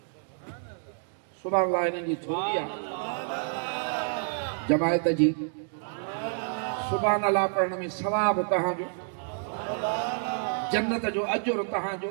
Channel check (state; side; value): silent; left; digital silence